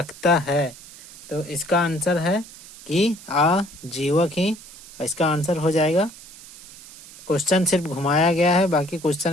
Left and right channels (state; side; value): noise; right; hiss, 18 dB below the sound